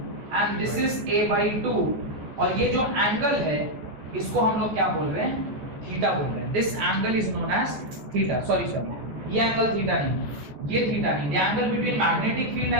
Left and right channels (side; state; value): left; late; 14 ms